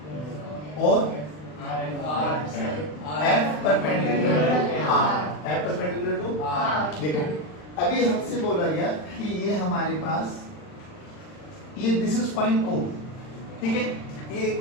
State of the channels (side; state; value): right; late; 40 ms